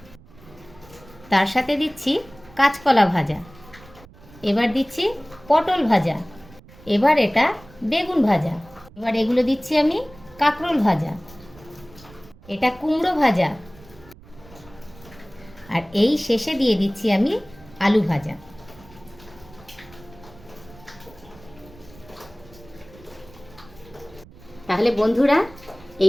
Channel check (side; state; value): right; noise; rumble, 23 dB below the sound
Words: তার সাথে দিচ্ছি কাঁচকলা ভাজা, এবার দিচ্ছি পটল ভাজা, এবার এটা বেগুন ভাজা, এবার এগুলো দিচ্ছি আমি কাঁকরোল ভাজা, এটা কুমড়ো ভাজা, আর এই শেষে দিয়ে দিচ্ছি আমি আলু ভাজা। তাহলে বন্ধুরা,